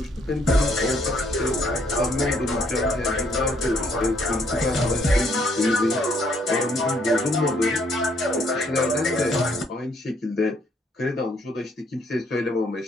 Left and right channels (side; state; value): both; normal; correlation 0.68